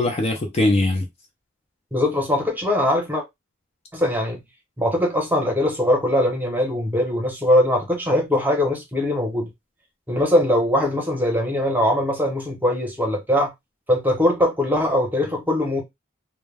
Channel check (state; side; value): normal; both; correlation 0.57